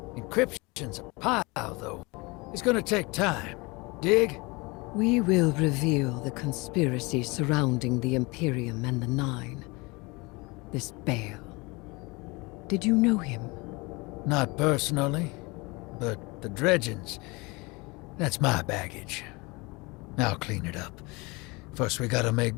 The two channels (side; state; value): right; quieter; 25.7 dB